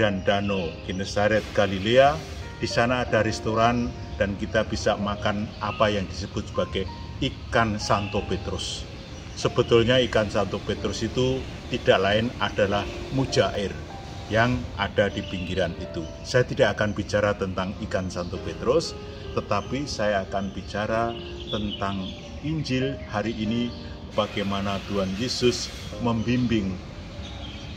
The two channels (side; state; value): both; identical; correlation 1.00